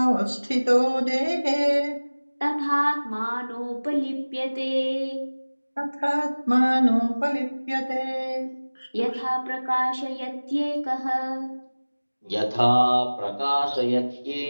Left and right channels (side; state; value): both; inverted; correlation -1.00